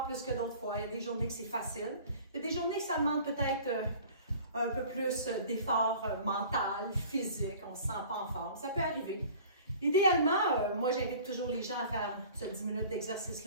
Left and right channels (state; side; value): inverted; both; correlation -0.46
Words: plus que d'autres fois. Il y a des journées que c'est facile. Il y a des journées que ça demande peut-être un peu plus d'effort mental, physique. On ne se sent pas en forme. Ça peut arriver. Idéalement, moi, j'invite toujours les gens à faire ce 10 minutes